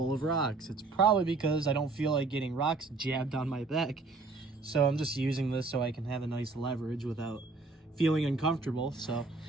of rocks. It's probably because I don't feel like getting rocks jabbed on my back. So I'm just using this so I can have a nice leverage without feeling uncomfortable. So,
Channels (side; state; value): left; quieter; 3.7 dB